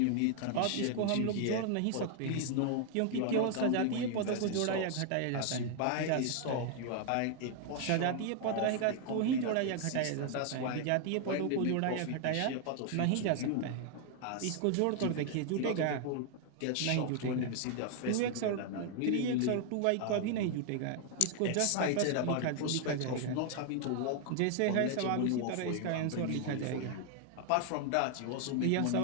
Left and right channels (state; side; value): different; both; correlation 0.00